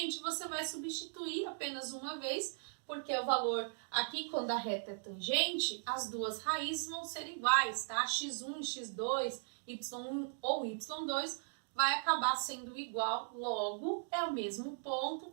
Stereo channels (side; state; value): left; silent; digital silence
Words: você vai substituir apenas uma vez, porque o valor aqui, quando a reta é tangente, as duas raízes vão ser iguais, tá? x1 e x2, y1 ou y2 vai acabar sendo igual, logo é o mesmo ponto,